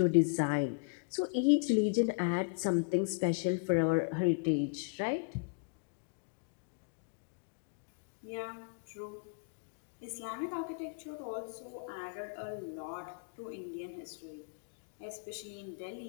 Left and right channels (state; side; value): quieter; right; 35.8 dB